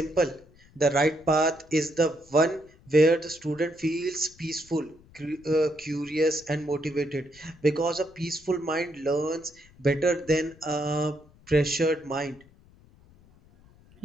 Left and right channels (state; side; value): noise; left; rumble, 27 dB below the sound